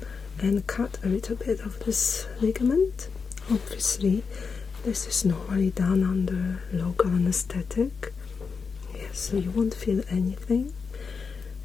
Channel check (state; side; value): quieter; right; 5.3 dB